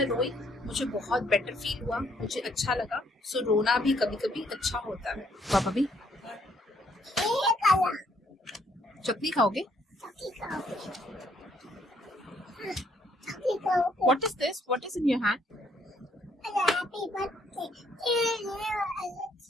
रोई मुझे बहुत बेटर फील हुआ, मुझे अच्छा लगा। सो रोना भी कभी कभी अच्छा होता है। पापा भी ये काला चटनी खाओगे? चक्की खाओगे चक्की खाओगे what is this? What is in your hand? Happy birthday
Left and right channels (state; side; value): normal; both; correlation 0.68